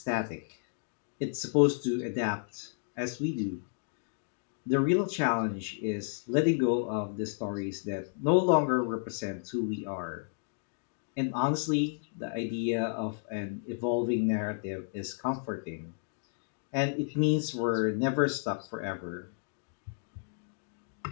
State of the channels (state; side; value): silent; right; digital silence